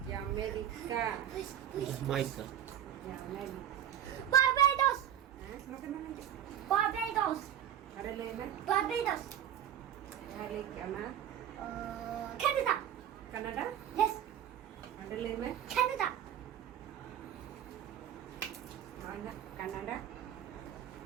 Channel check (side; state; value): left; quieter; 10.4 dB